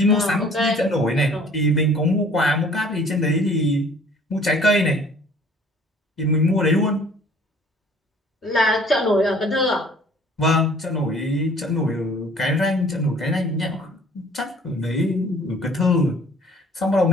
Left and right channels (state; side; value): normal; both; correlation 0.53